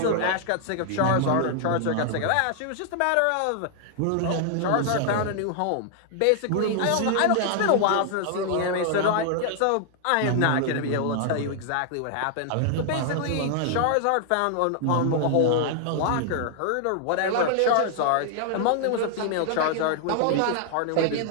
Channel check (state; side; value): different; both; correlation 0.00